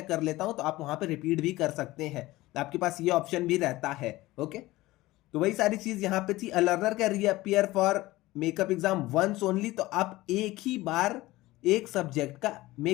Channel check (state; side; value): quieter; right; 18.4 dB